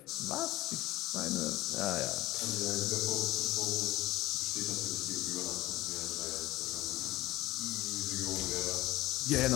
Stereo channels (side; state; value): right; quieter; 17.4 dB